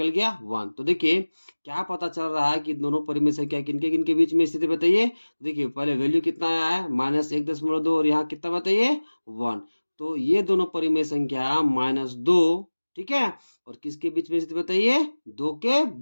गया, 1। तो देखिए क्या पता चल रहा है कि दोनों परिमेय संख्या किनके किनके बीच में स्थित है बताइए। तो देखिए पहले वैल्यू कितना आया है, -1.2 और यहाँ कितना बताइए, 1। तो ये दोनों परिमेय संख्या -2, ठीक है, और किसके बीच में स्थित बताइए, 2 के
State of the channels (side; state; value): both; inverted; correlation -1.00